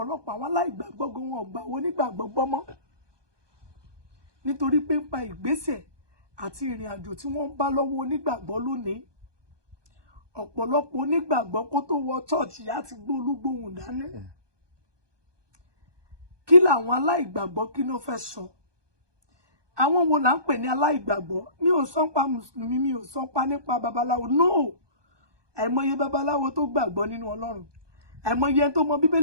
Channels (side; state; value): left; late; 1.2 ms